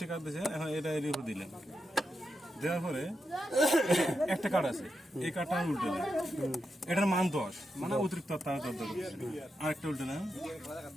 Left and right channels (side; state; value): both; normal; correlation 0.86